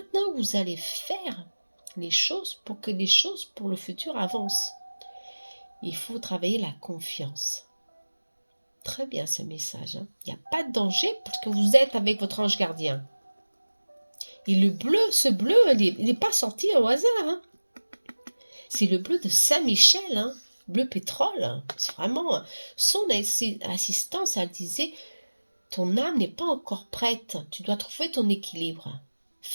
que vous allez faire les choses pour que les choses pour le futur avancent. Il faut travailler la confiance. Très bien ce message, hein. Il n'y a pas de danger parce que vous êtes avec votre ange gardien. Et le bleu, ce bleu, il n'est pas sorti au hasard, hein. C'est le bleu de Saint-Michel, hein. Bleu pétrole. C'est vraiment son assistance. Elle disait, ton âme n'est pas encore prête. Tu dois trouver ton équilibre.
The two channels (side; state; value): both; inverted; correlation -1.00